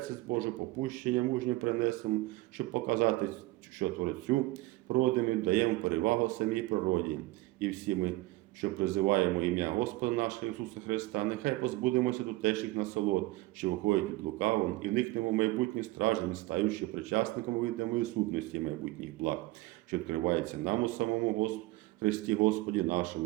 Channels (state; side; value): quieter; left; 19.8 dB